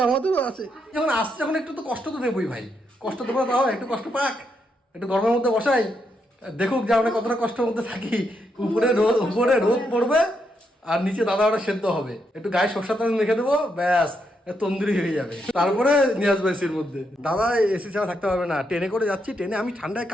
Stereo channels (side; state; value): both; normal; correlation 0.80